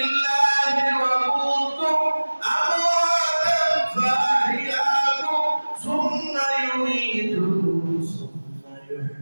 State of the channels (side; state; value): both; inverted; correlation -1.00